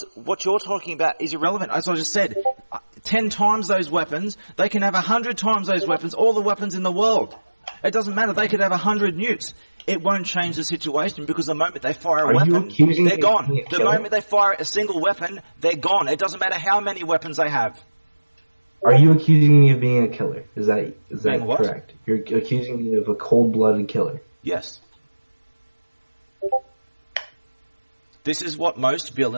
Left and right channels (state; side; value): inverted; both; correlation -1.00